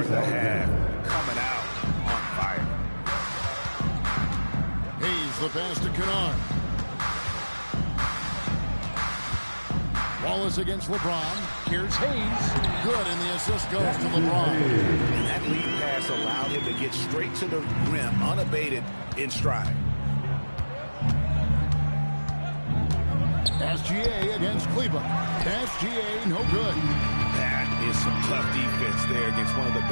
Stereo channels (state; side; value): inverted; both; correlation -1.00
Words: the half. Coming out on fire. Hayes the pass to Kennard. Wallace against LeBron. Here's Hayes. Good, and the assist goes to LeBron. And that lead pass allowed him to get straight to the rim, unabated in stride. SGA against Kleber. SGA, no good. That is some tough defense there against one of the